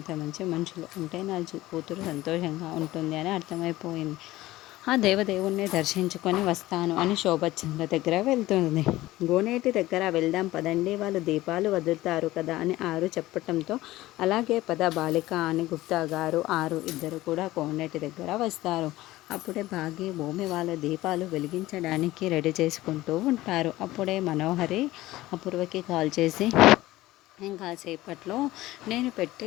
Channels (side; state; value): right; quieter; 17.1 dB